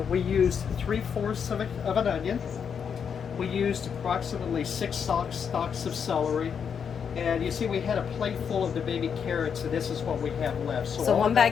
we used 3/4 of an onion. We used approximately 6 stalks of celery. And you see, we had a plate full of the baby carrots, and this is what we have left. So 1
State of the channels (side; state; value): right; quieter; 7.1 dB